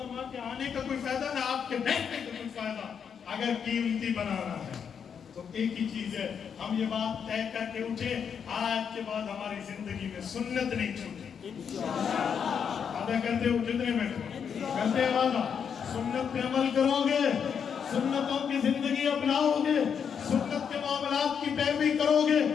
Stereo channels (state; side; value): quieter; right; 7.2 dB